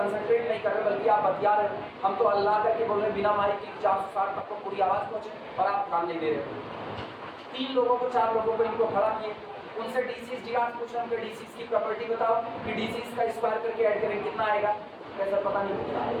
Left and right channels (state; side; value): identical; both; correlation 1.00